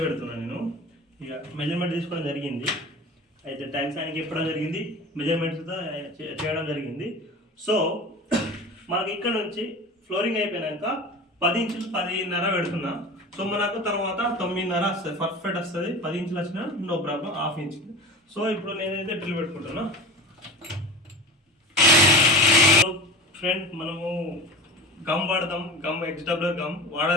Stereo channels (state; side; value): normal; both; correlation 0.32